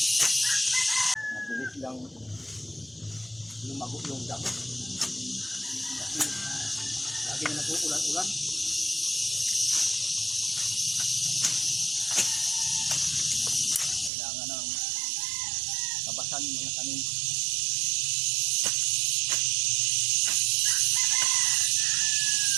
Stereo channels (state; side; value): drops out; left; at 14.1 s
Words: Mabilis lang lumago yung damo. Kasi lagi na nag-uulan-ulan. Kailangan ng tabasan yung mga tanim.